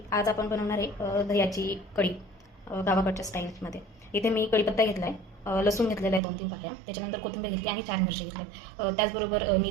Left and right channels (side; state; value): left; drops out; at 6.2 s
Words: आज आपण बनवणार आहे दह्याची कढी गावाकडच्या स्टाईलमध्ये. इथे मी कढीपत्ता घेतला आहे, लसूण घेतलेला आहे 2-3 पाकळ्या, त्याच्यानंतर कोथिंबीर घेतली आणि 4 मिरची घेतल्या. त्याचबरोबर मी